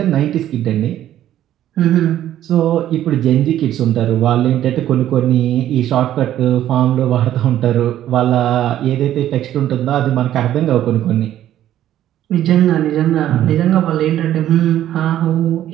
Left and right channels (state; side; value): quieter; left; 12.2 dB